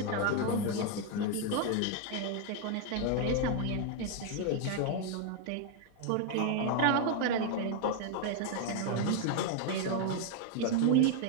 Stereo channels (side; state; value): both; different; correlation 0.01